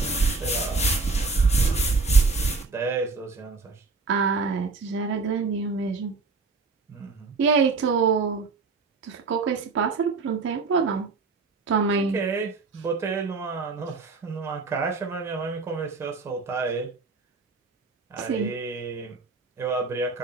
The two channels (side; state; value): left; quieter; 4.2 dB